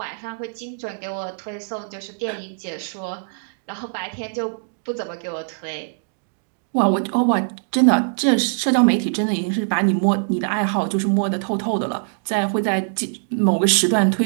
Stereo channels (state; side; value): silent; left; digital silence